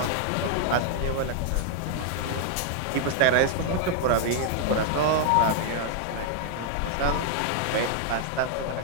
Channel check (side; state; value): both; different; correlation 0.00